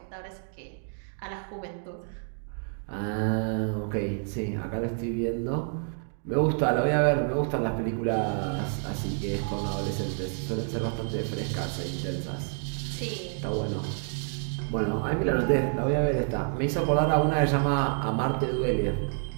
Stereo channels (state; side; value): silent; left; 59 dB below the other